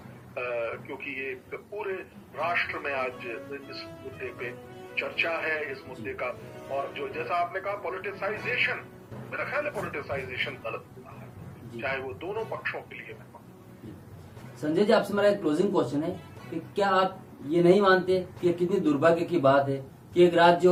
क्योंकि ये पूरे राष्ट्र में आज इस मुद्दे पे चर्चा है, इस मुद्दे का, और जो जैसा आपने कहा पॉलिटिसाइजेशन, मेरा ख्याल है पॉलिटिसाइजेशन गलत हुआ है, चाहे वो दोनों पक्षों के लिए। संजय जी, आपसे मेरा एक क्लोजिंग क्वेश्चन है कि क्या आप ये नहीं मानते कि कितनी दुर्भाग्य की बात है कि एक राज्य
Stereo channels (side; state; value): both; identical; correlation 1.00